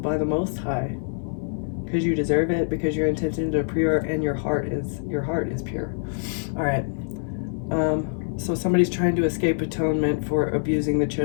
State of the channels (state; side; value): silent; right; 62 dB below the other